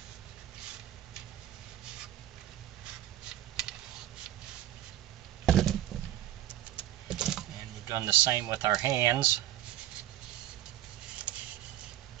Done the same with our hands.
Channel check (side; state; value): left; quieter; 12.9 dB